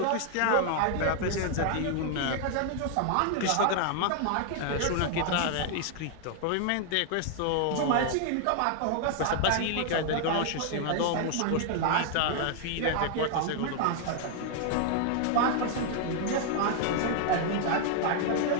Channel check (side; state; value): both; different; correlation 0.00